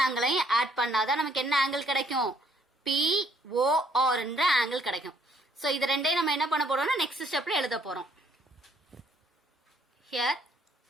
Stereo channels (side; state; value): both; normal; correlation 0.65